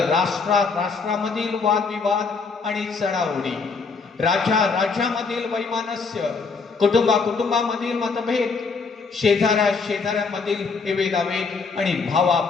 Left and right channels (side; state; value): right; quieter; 4.7 dB